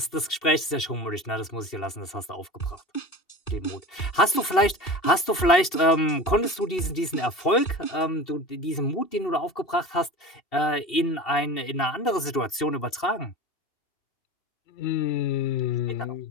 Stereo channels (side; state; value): right; late; 2.7 ms